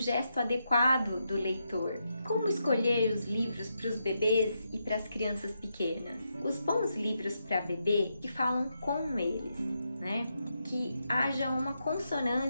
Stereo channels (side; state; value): both; inverted; correlation -0.83